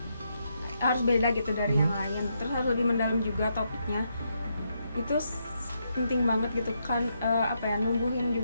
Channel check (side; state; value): both; inverted; correlation -0.80